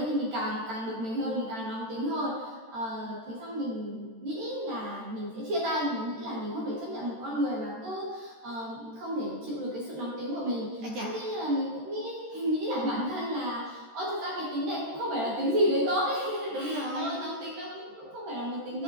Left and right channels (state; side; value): late; left; 13 ms